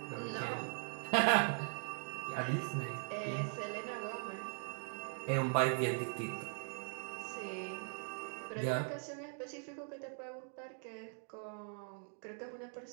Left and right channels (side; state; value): left; silent; 51 dB below the other